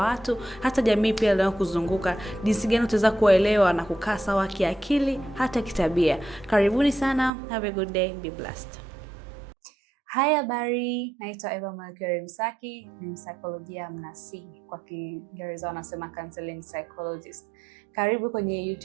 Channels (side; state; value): left; drops out; at 7.3 s